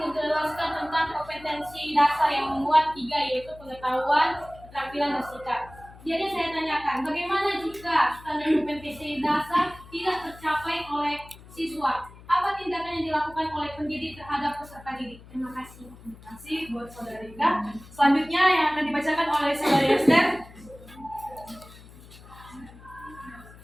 tentang kompetensi dasar yang memuat 3, yaitu pengetahuan, keterampilan, dan sikap. Jadi saya tanyakan, bagaimana jika standar kompetensi dasar tidak tercapai oleh siswa? Apa tindakan yang dilakukan oleh pendidik terhadap peserta didik? Terima kasih. Terima kasih buat Saudari Ika. Selanjutnya yang akan dibacakan oleh Saudari Esther.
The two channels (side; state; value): left; noise; hum, 20 dB below the sound